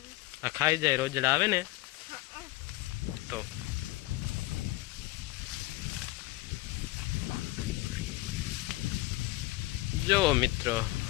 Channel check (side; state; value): right; quieter; 19.4 dB